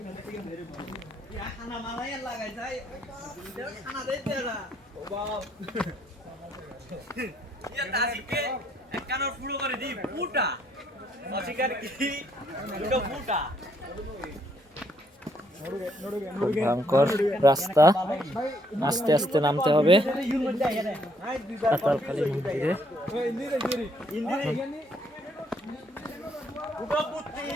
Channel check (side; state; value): both; normal; correlation 0.69